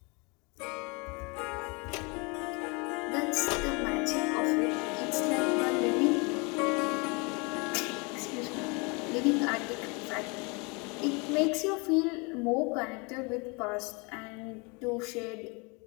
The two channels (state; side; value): quieter; right; 30.1 dB